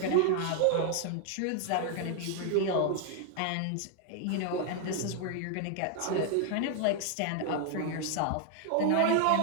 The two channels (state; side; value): different; both; correlation 0.00